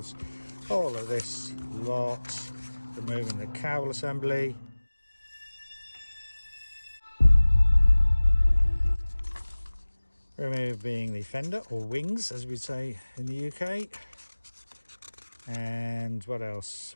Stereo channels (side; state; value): both; inverted; correlation -1.00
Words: all of this lot, removing the cowl assembly, removing the fender or wings, as we say in the UK, and what else?